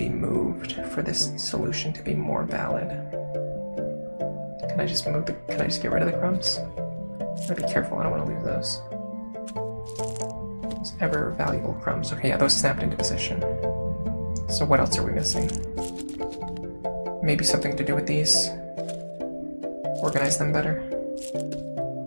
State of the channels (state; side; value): inverted; both; correlation -1.00